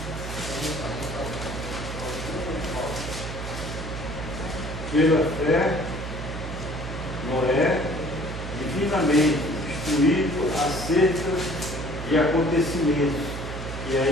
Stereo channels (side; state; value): right; noise; hum, 7 dB below the sound